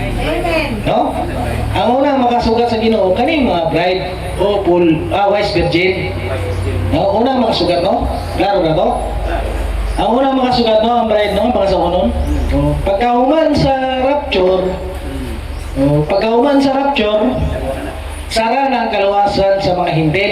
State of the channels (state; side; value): identical; both; correlation 1.00